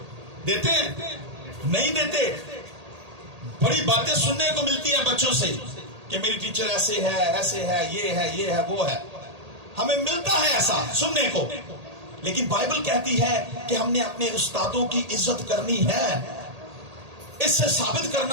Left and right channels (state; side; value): late; left; 1.8 ms